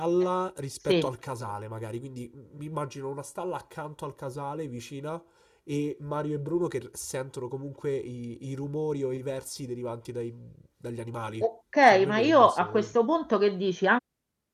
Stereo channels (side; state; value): both; identical; correlation 1.00